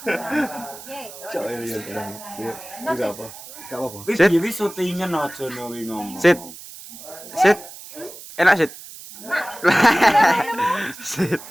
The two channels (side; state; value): right; noise; hiss, 15 dB below the sound